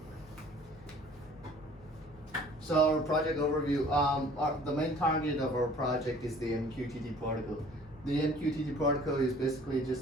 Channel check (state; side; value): normal; both; correlation 0.52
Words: So our project overview, the main target of our project is the MQTT protocol. The MQTT protocol is basically